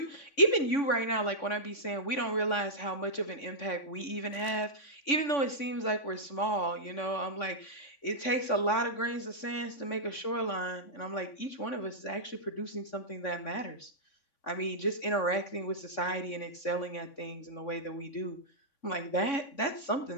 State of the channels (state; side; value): late; right; 3.5 ms